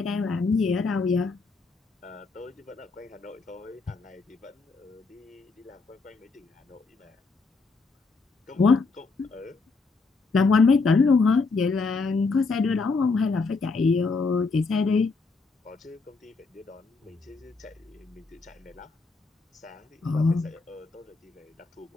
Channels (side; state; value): right; quieter; 4.1 dB